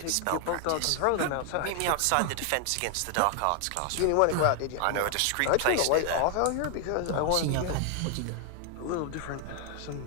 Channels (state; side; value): different; both; correlation 0.00